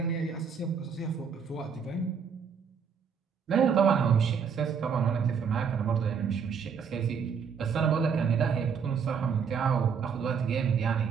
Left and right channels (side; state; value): left; quieter; 6.5 dB